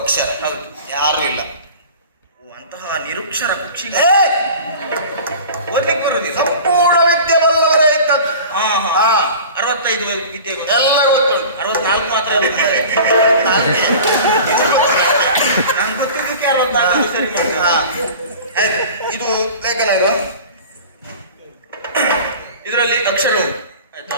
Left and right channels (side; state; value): both; inverted; correlation -0.39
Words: ಹೌದು ಯಾರು ಇಲ್ಲ ಓ, ಅಂತಹ ನಿರುಕ್ಷರ ಕುಕ್ಷಿ ಏ, ಓದ್ಲಿಕ್ಕೆ ಬರುದಿಲ್ಲ ಸಂಪೂರ್ಣ ವಿದ್ಯೆ ಬಲ್ಲವರೇ ಇದ್ದದ್ದು ಹಾ ಹಾ. ಹಾ 65 ವಿದ್ಯೆ ಗೊತ್ತು. ಎಲ್ಲ ಗೊತ್ತುಂಟು 64 ಮಾತ್ರ ನಾಲ್ಕೇ. ನನ್ಗೆ ಗೊತ್ತಿದ್ದಕ್ಕೆ 64 ಸರಿ ಮಾಡ್ತಾರೆ ಹಾ. ಆಯ್ತು ಇದು ಲೇಖನ ಇದು ಇದರಲ್ಲಿ ಅಕ್ಷರ ಉಂಟು ಆಯ್ತಾ